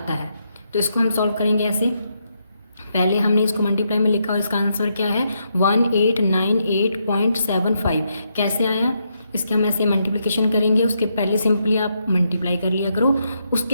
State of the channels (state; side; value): inverted; both; correlation -0.80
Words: है। तो इसको हम सॉल्व करेंगे ऐसे। पहले हमने इसको मल्टीप्लाई में लिखा और इसका आंसर क्या है 1898.75। कैसे आया, इसके हम ऐसे मल्टीप्लिकेशन करेंगे, उसके पहले सिंपली आप मल्टीप्लाई कर लिया करो।